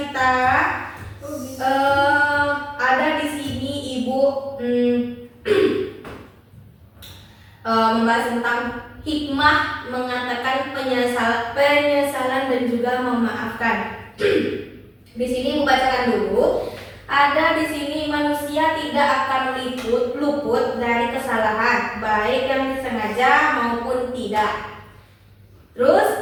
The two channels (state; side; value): identical; both; correlation 1.00